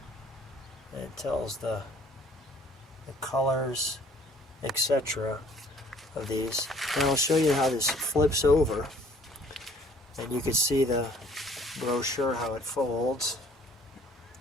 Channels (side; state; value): both; normal; correlation 0.57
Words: it tells the colors, etc. of these. And I'll show you how this flips over. And you can see the brochure, how it folds.